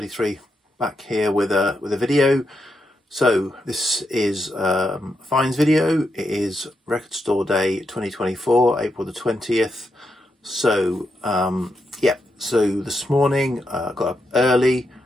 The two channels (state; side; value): normal; both; correlation 0.84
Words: back here with a video. So this is Fines video. It is Record Store Day 2024, April the 20th. So yeah, so this morning got up early,